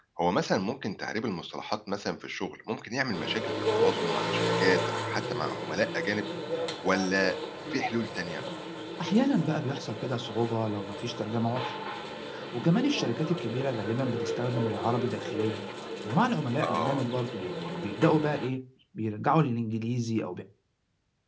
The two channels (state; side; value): identical; both; correlation 1.00